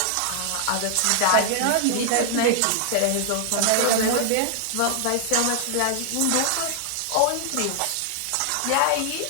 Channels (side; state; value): both; different; correlation 0.00